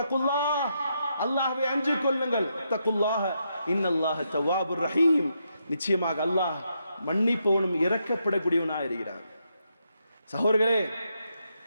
அல்லாஹ்வை அஞ்சிக் கொள்ளுங்கள். தக்குல்லாஹ இன்னல்லாஹ தவ்வாபுர் ரஹீம். நிச்சயமாக அல்லாஹ் மன்னிப்பவனும் இரக்கப்படக்கூடியவனாக இருக்கிறார். சகோதரர்களே,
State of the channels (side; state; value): both; inverted; correlation -0.81